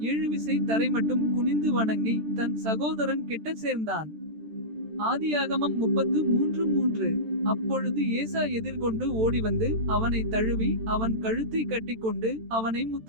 7 விசை தரைமட்டும் குனிந்து வணங்கி. தன் சகோதரன் கிட்ட சேர்ந்தான். ஆதியாகமம் 33:3. அப்பொழுது ஏசா எதிர்கொண்டு ஓடிவந்து அவனை தழுவி. அவன் கழுத்தை கட்டிக்கொண்டு அவனை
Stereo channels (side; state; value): left; late; 13 ms